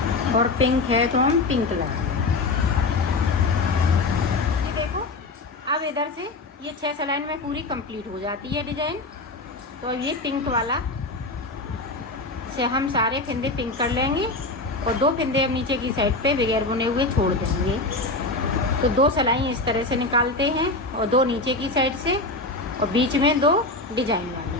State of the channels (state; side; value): quieter; right; 3.2 dB